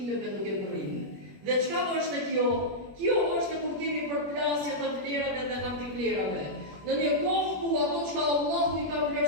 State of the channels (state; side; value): late; left; 21 ms